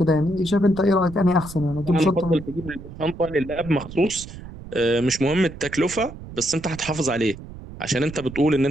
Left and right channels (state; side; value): noise; right; rumble, 14 dB below the sound